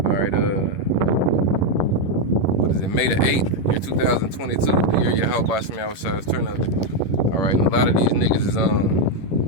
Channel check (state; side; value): late; right; 11 ms